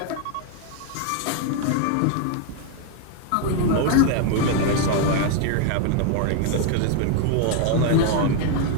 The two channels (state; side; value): different; both; correlation 0.00